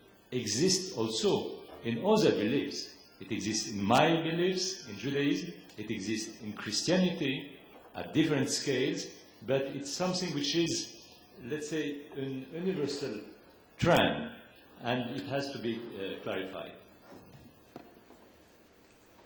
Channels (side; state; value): both; identical; correlation 1.00